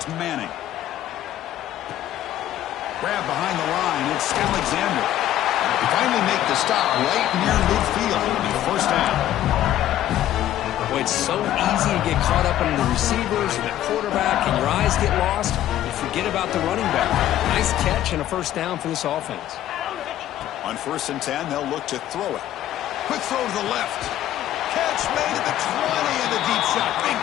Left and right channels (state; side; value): quieter; right; 12.7 dB